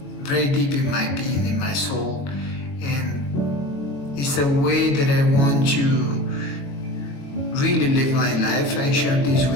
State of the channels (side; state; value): right; late; 22 ms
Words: very deep in my being, in my soul, and it's a way that I want to really live my life. I share this